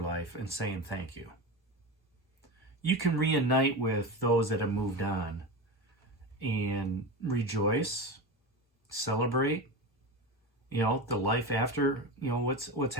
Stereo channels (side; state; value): both; normal; correlation 0.23